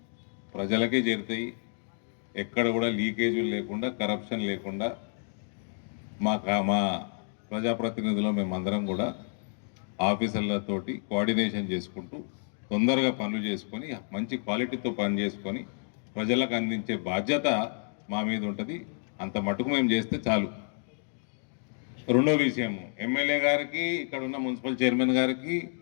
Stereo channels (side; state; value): right; silent; 58 dB below the other